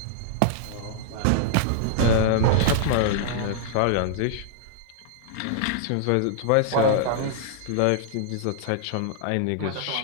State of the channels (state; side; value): different; both; correlation -0.01